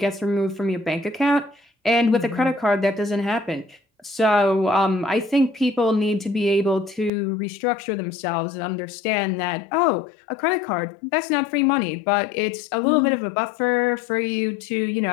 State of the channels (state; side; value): drops out; right; at 7.1 s